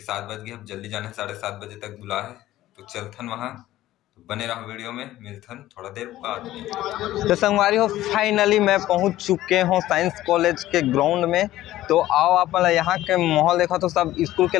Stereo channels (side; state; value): right; quieter; 14.8 dB